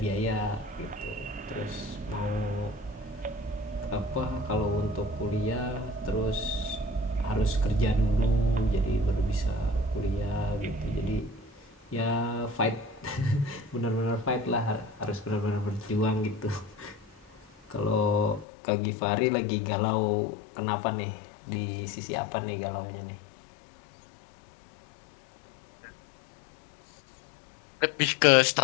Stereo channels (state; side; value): drops out; right; at 18.4 s